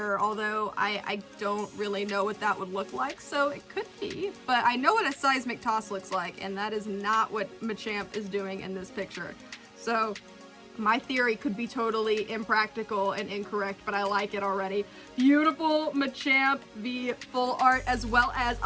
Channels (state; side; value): identical; both; correlation 1.00